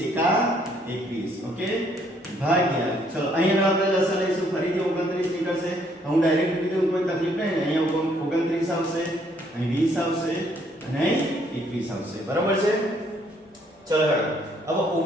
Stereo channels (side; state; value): both; normal; correlation 0.67